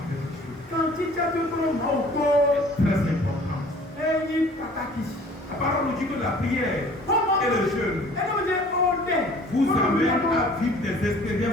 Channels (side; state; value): both; normal; correlation 0.51